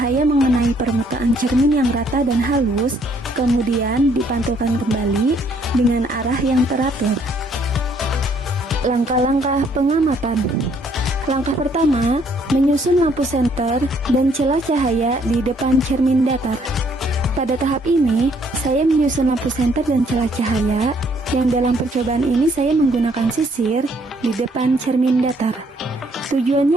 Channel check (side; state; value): both; normal; correlation 0.66